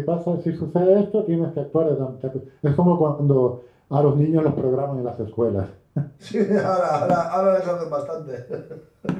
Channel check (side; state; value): both; identical; correlation 1.00